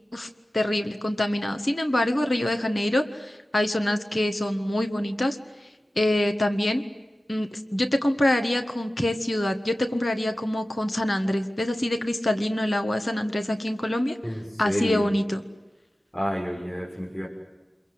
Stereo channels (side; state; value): both; normal; correlation 0.96